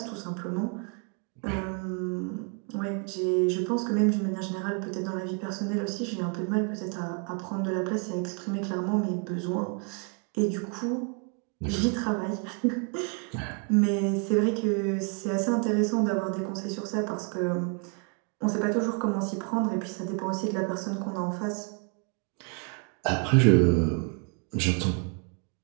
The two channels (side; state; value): left; quieter; 37.4 dB